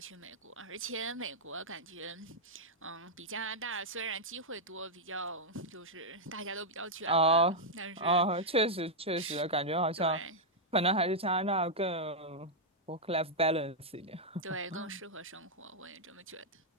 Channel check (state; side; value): normal; both; correlation -0.05